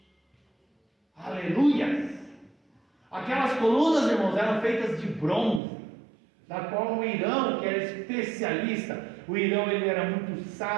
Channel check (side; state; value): left; drops out; at 5.6 s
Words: Aleluia! Aquelas colunas, irmãos, eram feitas de bronze, da qual o Irão, que era especialista, o Irão ele era muito